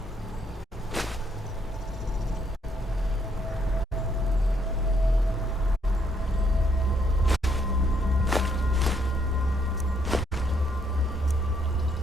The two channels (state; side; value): normal; both; correlation 0.71